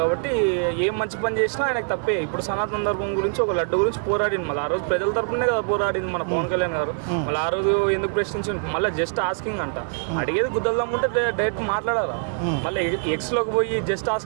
ఏం మంచి పని చేసినా ఆయనకు తప్పే. ఇప్పుడు సనాతన ధర్మం గురించి ఒక లడ్డు గురించి పోరాడింది. మళ్ళీ ఆ రోజు ప్రజల తరపునే కదా పోరాడింది మన పవన్ కళ్యాణ్ గారు. మళ్ళీ ఆ రోజు ఎందుకు ప్రశ్నించింది? మళ్ళీ జస్ట్ ఆస్కింగ్ అంట. అడిగేది గుద్దల్దాం ఉంటే డైరెక్ట్ మాట్లాడాలా. మళ్ళీ ఎక్స్లోకి పోయి జస్ట్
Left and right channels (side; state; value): left; silent; 63 dB below the other